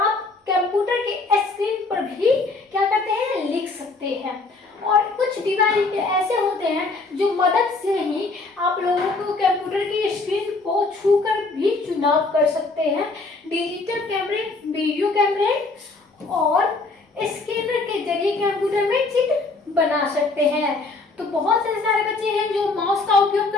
कंप्यूटर के स्क्रीन पर भी क्या करते हैं, लिख सकते हैं। और कुछ डिवाइस ऐसे होते हैं जो मदद से ही आप लोगों को कंप्यूटर की स्क्रीन को छूकर भी चुनाव कर सकते हैं। डिजिटल कैमरे, वीडियो कैमरे और स्कैनर के जरिए कंप्यूटर में चित्र बना सकते हैं। तो बहुत से सारे बच्चे हैं जो माउस का उपयोग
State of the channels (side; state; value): right; quieter; 3.6 dB